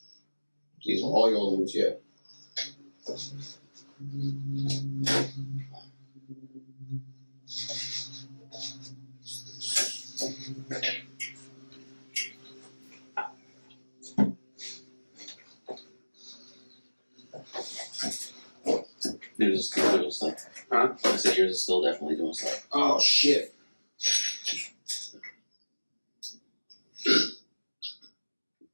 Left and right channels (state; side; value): inverted; both; correlation -1.00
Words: These are all your old ones, yeah. yours is still doing stuff. Huh? I said yours is still definitely doing stuff. Oh shit.